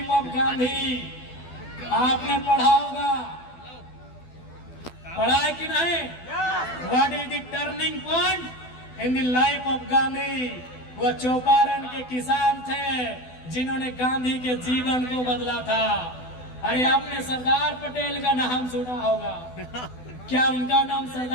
of Gandhi? आपने पढ़ा होगा, पढ़ा है कि नहीं? What is the turning point in the life of Gandhi? वो चौपारण के किसान थे जिन्होंने गांधी के जीवन को बदला था। अरे आपने सरदार पटेल का नाम सुना होगा, क्या उनका नाम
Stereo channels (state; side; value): late; right; 12 ms